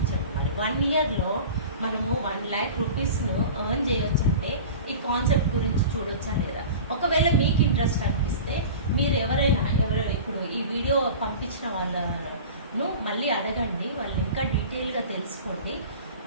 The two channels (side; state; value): both; inverted; correlation -0.36